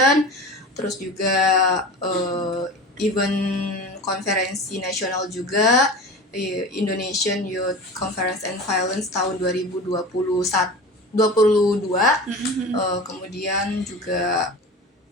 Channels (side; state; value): both; normal; correlation 0.33